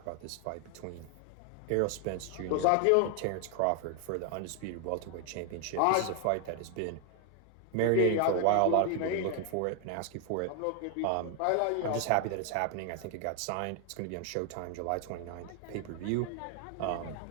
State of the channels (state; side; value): different; both; correlation 0.00